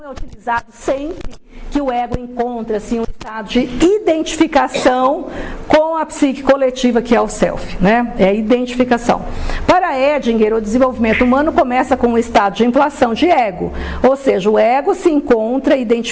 é utilizado sempre que o ego encontra-se em um estado de identificação com a psique coletiva, que é o self, né? É a identificação. Para Edinger, o desenvolvimento humano começa com um estado de inflação de ego, ou seja, o ego se encontra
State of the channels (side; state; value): both; identical; correlation 1.00